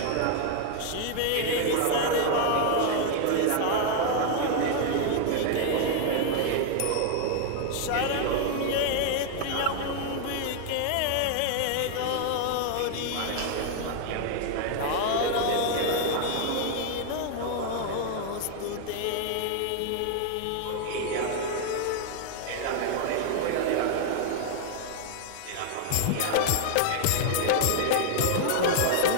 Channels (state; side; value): different; both; correlation 0.00